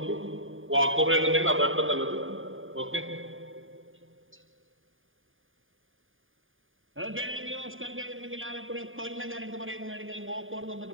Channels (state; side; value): late; left; 0.59 ms